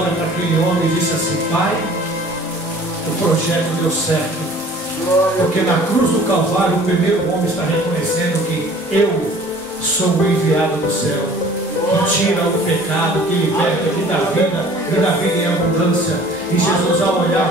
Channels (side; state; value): both; normal; correlation 0.49